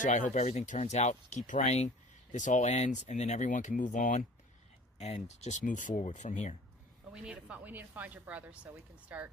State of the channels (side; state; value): both; normal; correlation 0.45